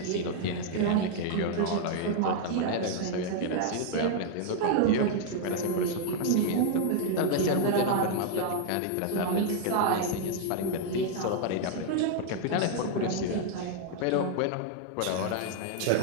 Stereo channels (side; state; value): both; different; correlation 0.00